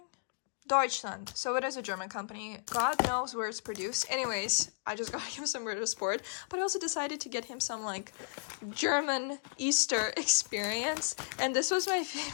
Deutschland. So it is a German company. God knows where it's produced. Anyways, I just got him some Ritter Sport, but I also decided to get him some like German Easter experience. And this was my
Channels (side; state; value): right; silent; digital silence